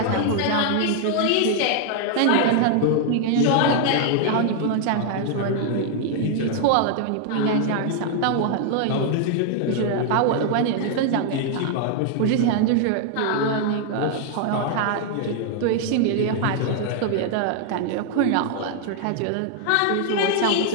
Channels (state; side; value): different; both; correlation 0.00